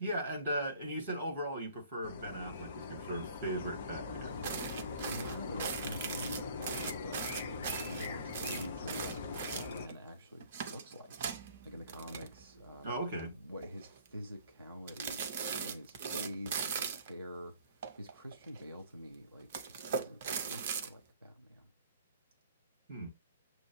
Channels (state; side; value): inverted; both; correlation -0.54